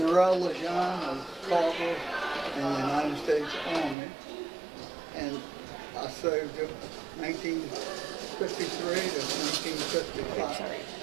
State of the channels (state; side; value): drops out; left; at 4.0 s